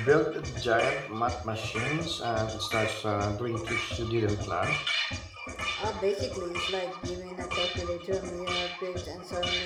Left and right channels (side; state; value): both; identical; correlation 1.00